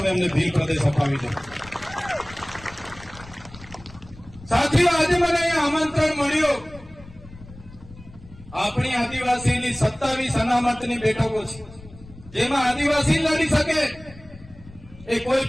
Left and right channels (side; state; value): left; noise; rumble, 20 dB below the sound